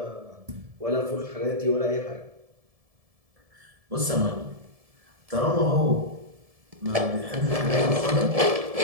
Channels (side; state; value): left; late; 1.7 ms